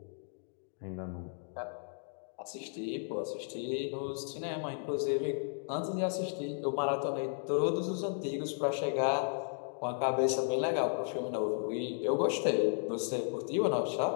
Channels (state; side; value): silent; right; digital silence